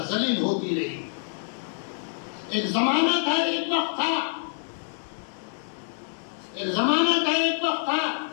ذلیل ہوتی رہی۔ ایک زمانہ تھا، ایک وقت تھا، ایک زمانہ تھا، ایک وقت تھا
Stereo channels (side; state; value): right; silent; digital silence